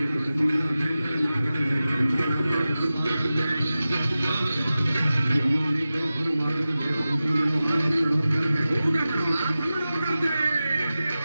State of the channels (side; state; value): both; inverted; correlation -0.95